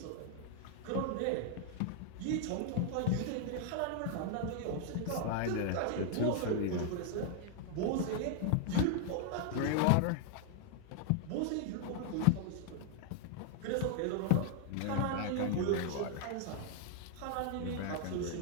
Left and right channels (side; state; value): both; different; correlation 0.00